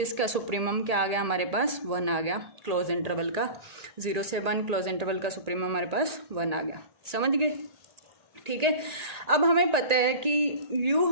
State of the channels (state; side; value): late; left; 1.8 ms